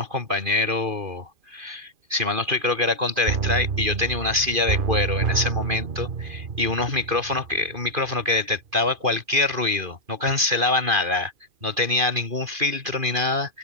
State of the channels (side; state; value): left; late; 2.5 ms